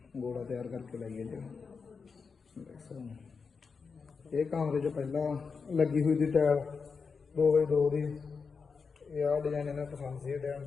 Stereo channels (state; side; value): quieter; right; 5.2 dB